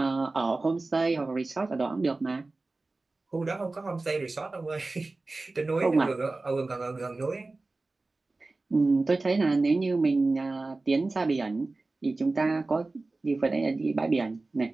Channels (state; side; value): quieter; left; 3.3 dB